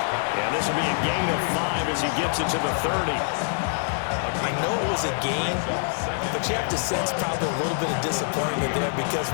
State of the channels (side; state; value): right; silent; digital silence